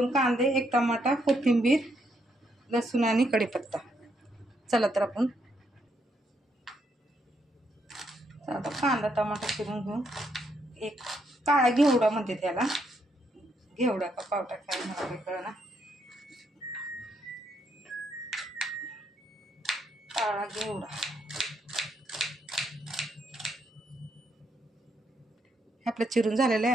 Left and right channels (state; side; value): normal; both; correlation 0.76